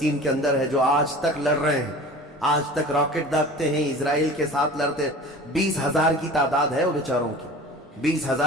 کے اندر ہے، جو آج تک لڑ رہے ہیں، آج تک راکٹ داغتے ہیں، اسرائیل کے ساتھ لڑتے، 20,000 کی تعداد ہے وہ بیچاروں کی،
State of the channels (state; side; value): normal; both; correlation 0.40